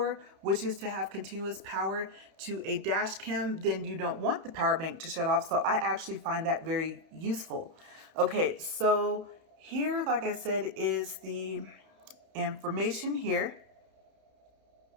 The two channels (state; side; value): late; left; 31 ms